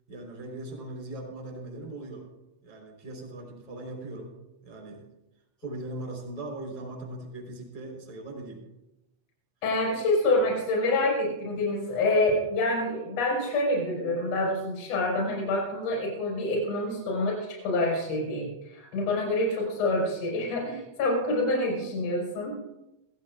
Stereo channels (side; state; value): right; late; 8.2 ms